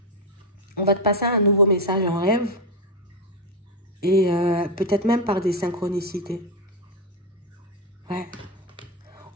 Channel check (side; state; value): both; normal; correlation 0.06